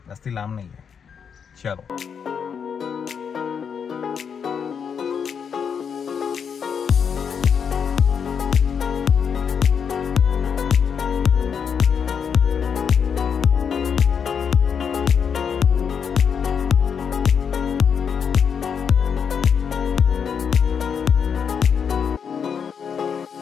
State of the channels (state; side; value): quieter; right; 7.0 dB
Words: जास्ती लांब नाही आहे. चलो.